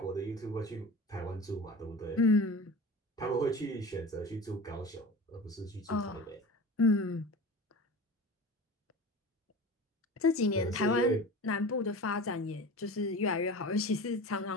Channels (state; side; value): normal; both; correlation 0.34